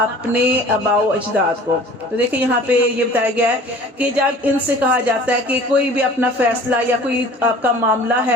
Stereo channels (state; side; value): normal; both; correlation 0.46